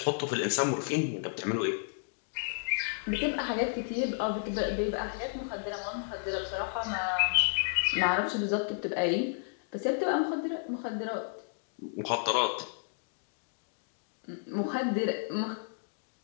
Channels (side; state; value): right; silent; digital silence